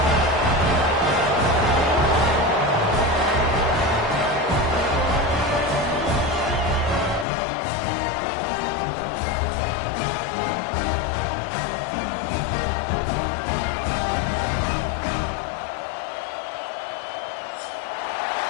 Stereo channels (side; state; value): right; drops out; at 7.2 s